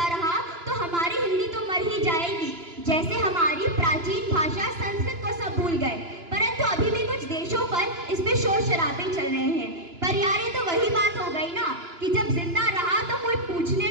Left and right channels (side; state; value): left; late; 2.9 ms